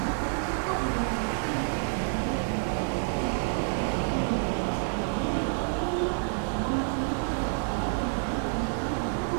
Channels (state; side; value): silent; left; digital silence